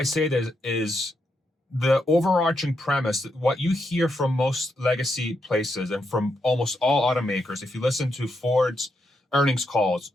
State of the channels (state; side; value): normal; both; correlation 0.82